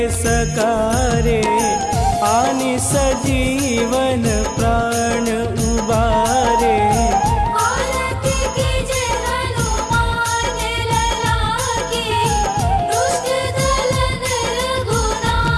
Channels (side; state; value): both; identical; correlation 1.00